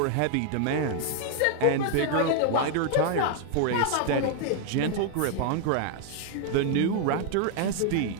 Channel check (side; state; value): both; different; correlation 0.00